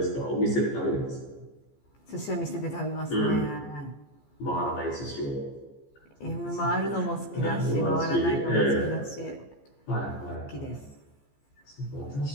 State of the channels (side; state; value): right; late; 14 ms